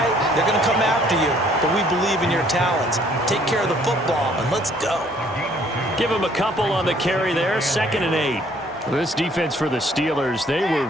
they're going to come after you, but we believe in your talents. Take care of the football, and let's go. Give him a couple on the carry there, 2nd and 8. This defense for the Steelers, they were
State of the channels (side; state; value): both; normal; correlation 0.61